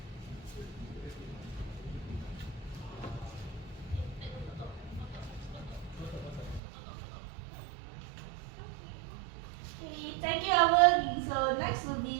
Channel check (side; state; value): left; drops out; at 6.6 s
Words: Okay, thank you, Elven. So next will